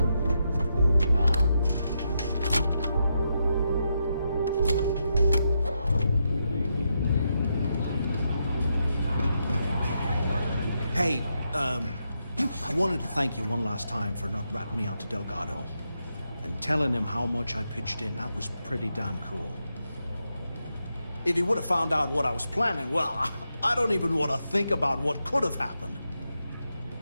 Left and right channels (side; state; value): both; inverted; correlation -0.84